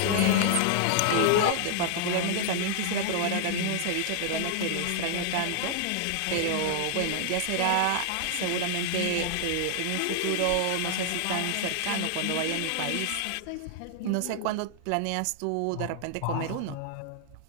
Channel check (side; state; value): both; different; correlation 0.00